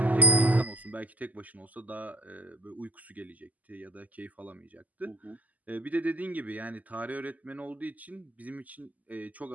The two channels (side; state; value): left; late; 0.078 ms